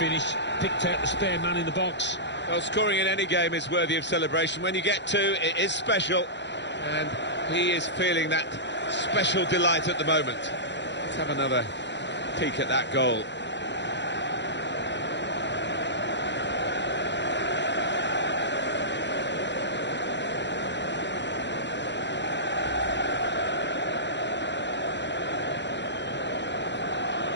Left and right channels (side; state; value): right; late; 0.52 ms